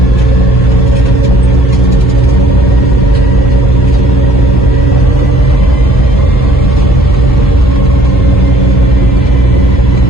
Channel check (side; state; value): both; normal; correlation 0.58